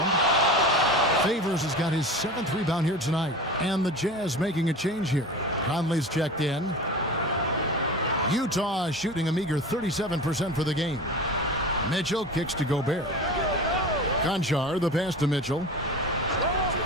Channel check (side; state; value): both; normal; correlation 0.33